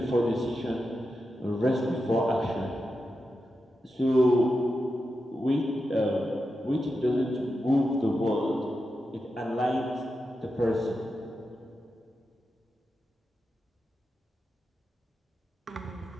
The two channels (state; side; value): normal; both; correlation 0.89